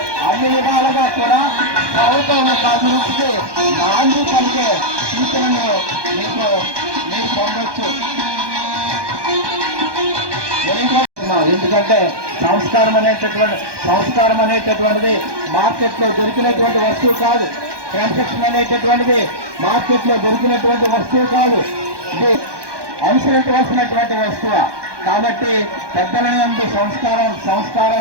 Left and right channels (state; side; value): late; left; 1.2 ms